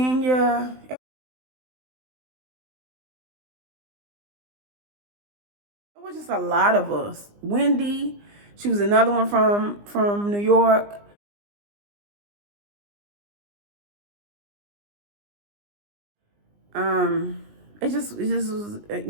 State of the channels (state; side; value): late; left; 20 ms